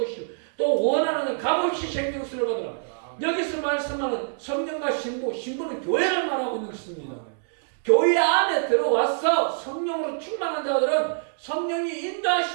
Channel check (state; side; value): silent; left; digital silence